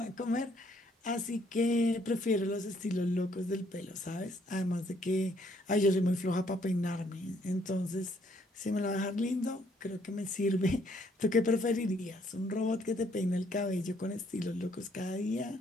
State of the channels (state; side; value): normal; both; correlation 0.67